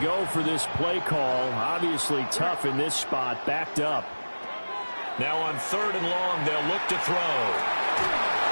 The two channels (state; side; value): inverted; both; correlation -1.00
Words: go for this play call. Obviously tough in this spot, backed up. Now on 3rd and long, they'll look to throw.